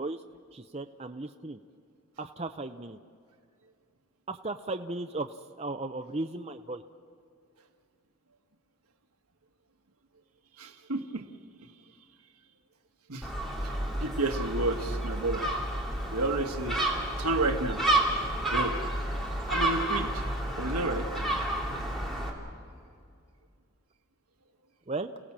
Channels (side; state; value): both; normal; correlation 0.34